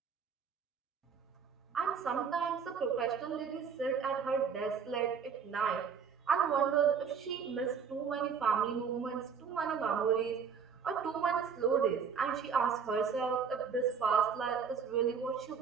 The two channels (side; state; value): left; quieter; 6.4 dB